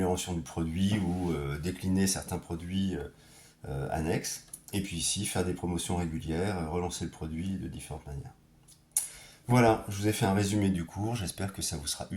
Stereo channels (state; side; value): identical; both; correlation 1.00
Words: du produit ou décliner certains produits annexes, et puis ici, faire des promotions régulières, relancer le produit de différentes manières. Voilà, je vous ai fait un résumé du cours, j'espère que ça vous sera